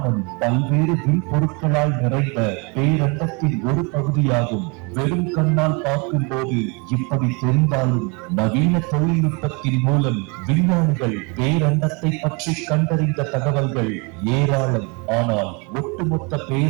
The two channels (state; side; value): quieter; left; 31.0 dB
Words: பல்வேறு விண்பொருட்களால் நிறைந்த பேரண்டத்தின் ஒரு பகுதியாகும். வெறும் கண்ணால் பார்க்கும் போது இப்படி தெரிந்தாலும் நவீன தொழில்நுட்பத்தின் மூலம் விஞ்ஞானிகள் பேரண்டத்தை பற்றி கண்டறிந்த தகவல்கள் ஏராளம். ஆனால் ஒட்டுமொத்த